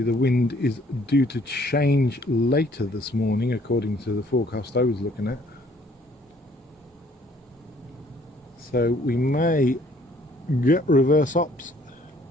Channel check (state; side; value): normal; both; correlation 0.61